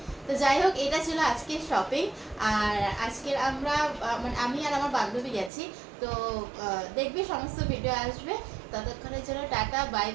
তো যাই হোক, এটা ছিল আজকের শপিং। আর আজকের আমরা মানে আমি আর আমার বান্ধবী গেছি। তো দেখবি সমস্ত ভিডিও আসবে। ততক্ষণের জন্য টাটা, বাই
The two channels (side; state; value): left; drops out; at 5.5 s